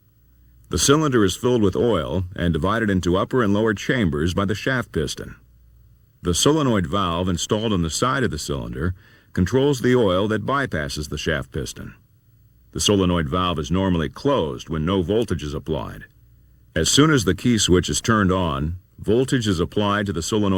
The cylinder is filled with oil and divided into upper and lower chambers by the shaft piston. The solenoid valve installed on the side of the cylinder controls the oil that bypasses the shaft piston. The solenoid valve is normally closed when no voltage is applied. As soon as the key switch is turned on, voltage is applied to the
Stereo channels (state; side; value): identical; both; correlation 1.00